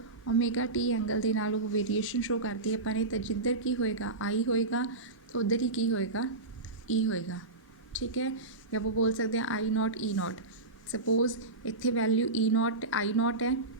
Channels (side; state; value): left; quieter; 3.2 dB